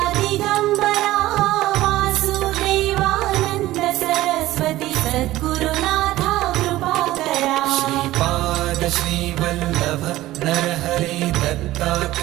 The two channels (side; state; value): left; quieter; 16.2 dB